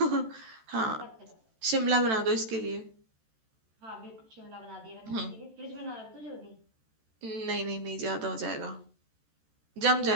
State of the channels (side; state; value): left; late; 13 ms